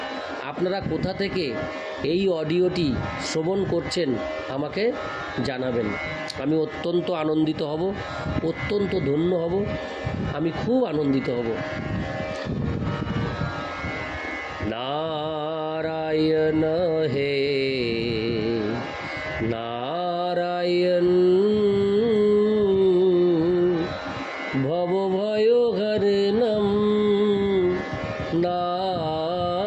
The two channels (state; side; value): identical; both; correlation 1.00